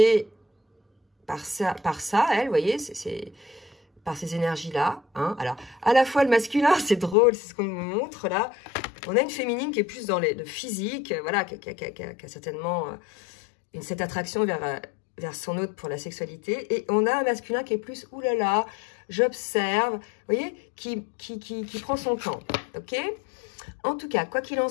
par ça elle, vous voyez, c'est par ces énergies-là. Hein? Alors, à la fois le masculin, c'est drôle, c'est ce qu'on me montre là. On a une féminine qui est plus dans le physique, voilà, qui a certainement cette attraction vers son autre pour la sexualité. Et on a un masculin qui est plus, oulala, j'observe, vous voyez, qui prend son temps, ok? En tout cas, quoi qu'il en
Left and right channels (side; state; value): right; drops out; at 7.2 s